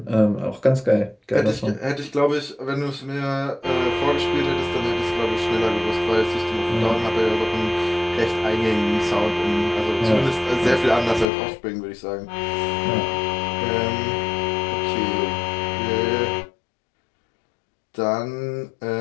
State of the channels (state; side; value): drops out; right; at 11.2 s